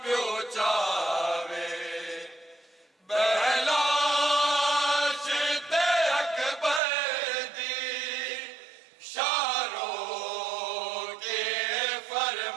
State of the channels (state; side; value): drops out; left; at 6.8 s